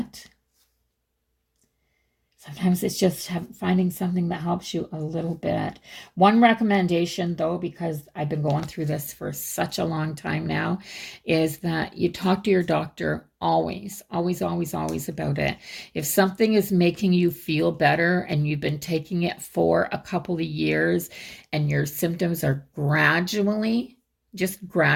Sometimes it's just finding something that helps you a little bit. One recommendation, though, because I've been going through this for such a long time now, is that you talk to your doctor always about it. If something is making you feel better and you've been taking it for a couple of years and your symptoms are just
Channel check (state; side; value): identical; both; correlation 1.00